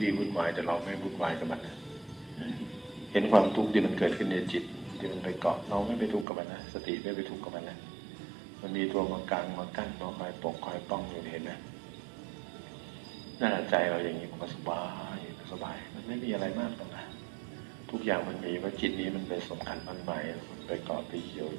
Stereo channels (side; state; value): left; drops out; at 6.2 s